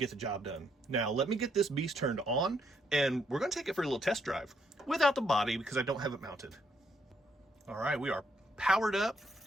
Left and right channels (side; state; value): both; normal; correlation 0.73